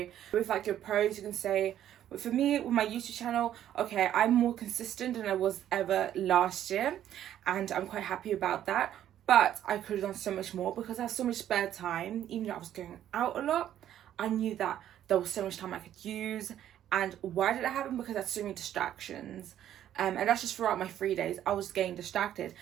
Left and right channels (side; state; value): left; quieter; 11.2 dB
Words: With like your pros, you can say, for me with my YouTube channel, okay, I'm more consistent than I was ever last year and I'm quite happy about that, but I could have done so much more because I have so much spare time. Even though I was going out a lot, I knew that there was so much time I could use. And why did it happen? Because I had so many distractions, and that's just throughout my 3 days I was getting distracted.